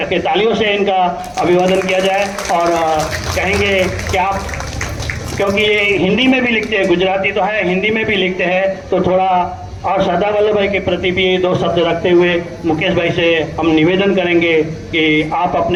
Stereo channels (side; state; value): both; identical; correlation 1.00